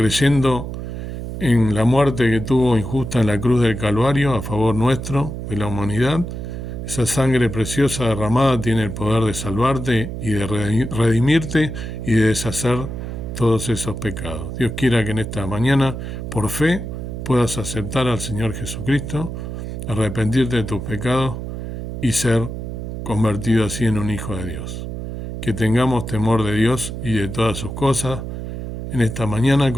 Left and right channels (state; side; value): noise; right; hum, 6 dB below the sound